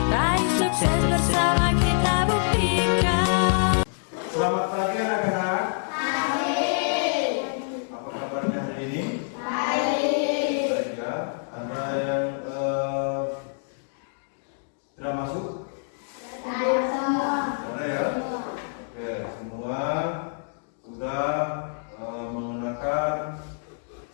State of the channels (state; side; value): silent; right; digital silence